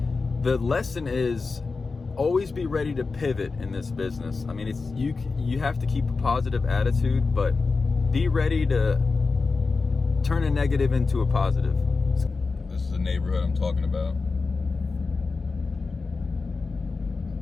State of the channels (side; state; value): right; quieter; 4.2 dB